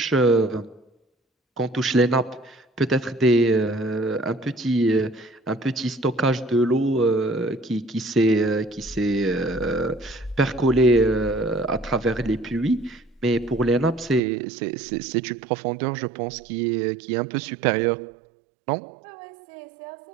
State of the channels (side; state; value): left; drops out; at 14.2 s